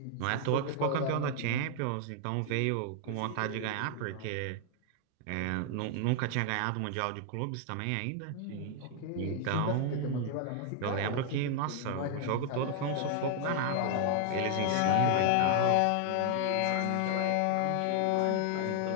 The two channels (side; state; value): both; different; correlation 0.00